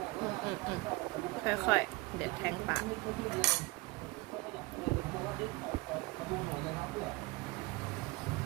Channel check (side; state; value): left; quieter; 22.7 dB